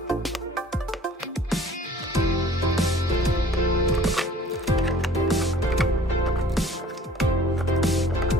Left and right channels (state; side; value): normal; both; correlation 0.51